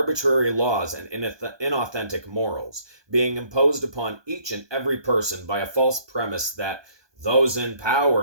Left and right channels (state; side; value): late; left; 1.2 ms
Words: laws and inauthentic morals, being imposed upon each and every person by a false premise that those in